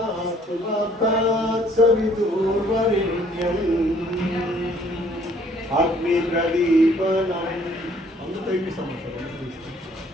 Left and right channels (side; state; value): both; normal; correlation 0.60